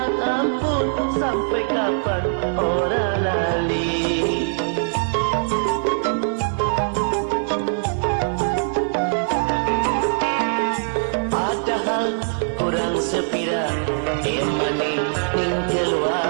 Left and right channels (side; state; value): left; silent; digital silence